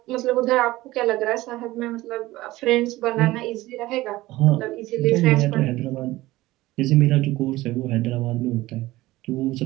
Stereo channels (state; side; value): quieter; left; 17.9 dB